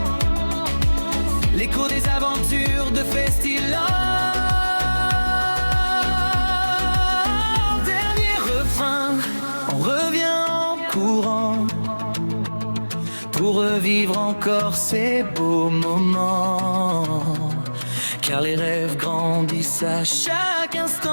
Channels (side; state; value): both; inverted; correlation -1.00